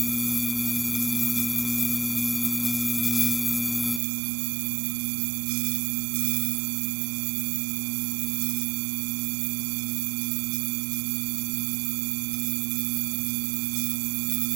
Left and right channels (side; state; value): left; drops out; at 4.0 s